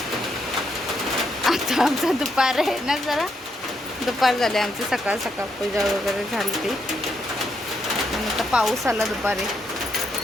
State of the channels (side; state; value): both; normal; correlation 0.78